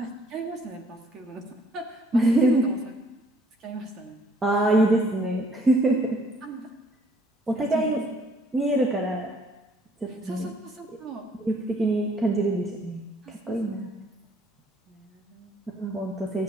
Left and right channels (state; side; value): normal; both; correlation 0.62